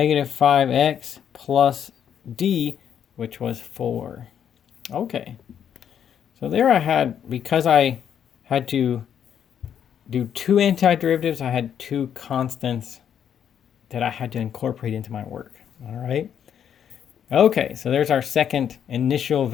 5x plus d, which was 4. Okay. So there I had, because I had to do two antiderivatives, I had two constants that I had to incorporate into my work. All right. Okay, so there's our second initial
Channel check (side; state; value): right; quieter; 8.8 dB